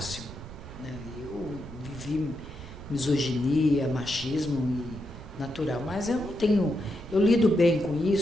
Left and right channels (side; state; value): right; noise; rumble, 13 dB below the sound